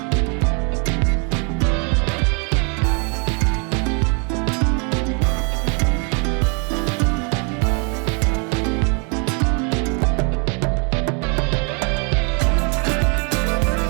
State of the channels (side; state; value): left; quieter; 35.8 dB